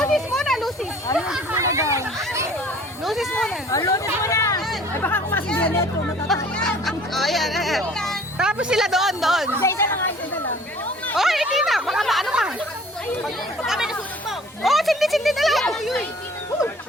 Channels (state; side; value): normal; both; correlation 0.50